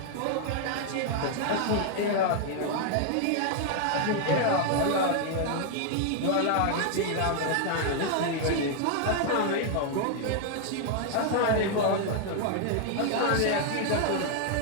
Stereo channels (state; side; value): different; both; correlation 0.00